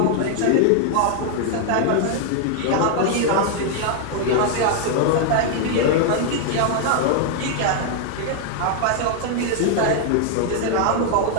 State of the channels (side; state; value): both; different; correlation 0.00